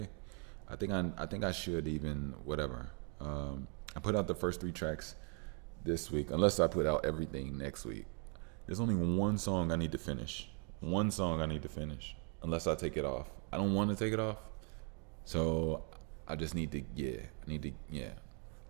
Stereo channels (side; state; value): left; quieter; 39.2 dB